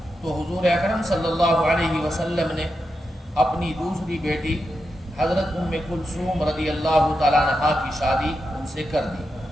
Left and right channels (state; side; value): normal; both; correlation 0.87